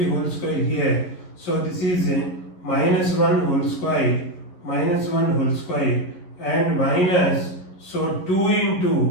whole square here, so this is minus 1 whole square, and minus, so 2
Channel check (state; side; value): late; right; 11 ms